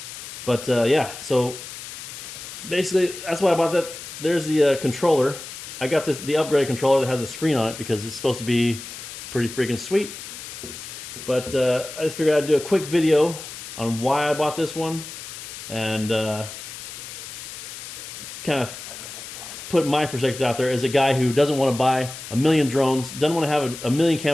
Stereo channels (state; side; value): noise; left; hiss, 11 dB below the sound